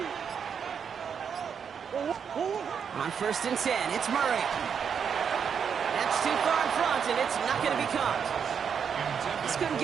On first and 10, it's Murray. That's too far in front, and it's not going to be caught. Just couldn't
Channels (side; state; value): left; quieter; 7.1 dB